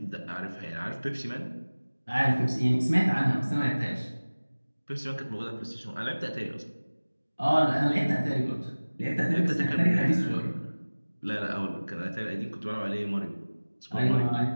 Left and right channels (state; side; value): inverted; both; correlation -1.00